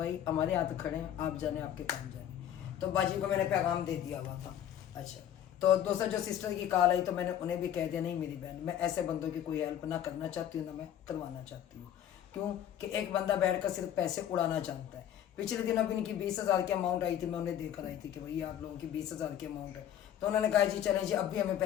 हमारे हाथ खड़े हैं, आप जाने आपके काम जाने। तो बाजी को मैंने पैगाम दे दिया हुआ था। अच्छा, तो दूसरा जो सिस्टर की कॉल आई तो मैंने उन्हें भी कह दिया, नहीं मेरी बहन मैं ऐसे बंदों की कोई हेल्प ना करना चाहती हूँ ना मैं करवाना चाहती हूँ। क्यों कि एक बंदा बैठकर सिर्फ पैसे उड़ाना जानता है। पिछले दिन अभी इनकी 20,000 की अमाउंट आई थी, मैं उन्हें देकर आई थी कि भाई आप लोगों की 20,000 की अमाउंट है। तो उन्होंने कहा जी चलें जी, अब भी हमें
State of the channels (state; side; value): quieter; right; 10.5 dB